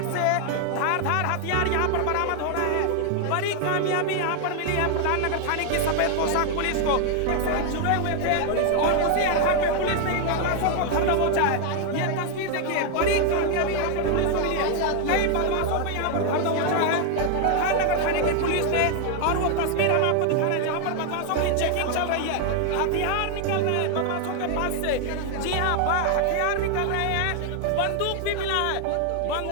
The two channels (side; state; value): both; different; correlation 0.00